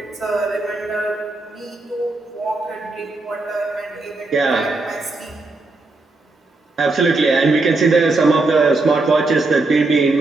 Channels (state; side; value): quieter; left; 3.3 dB